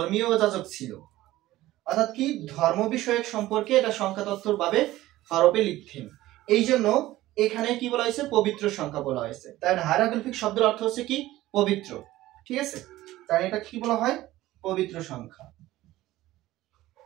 যাজক ছিল, অর্থাৎ কি ধর্ম বিষয়ক সম্পর্কে এটা সংখ্যা তত্ত্বর ভাবে হরফে লিখতেন। এই জন্য এখানে কি বলা হয়েছে? পবিত্র সংখ্যা বলা হয়েছে। তাই হায়ারোগ্লিফিক শব্দের অর্থ হচ্ছে কি পবিত্র। ঠিক আছে, তাই এটা কি বলা হয়? পবিত্র সংখ্যা।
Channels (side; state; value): left; quieter; 16.2 dB